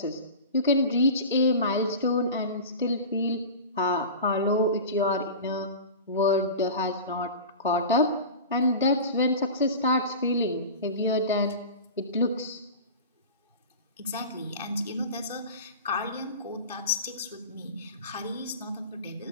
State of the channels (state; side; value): inverted; both; correlation -0.33